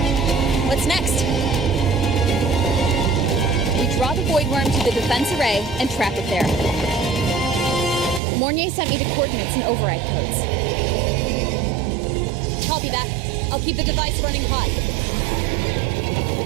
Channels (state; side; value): drops out; left; at 8.2 s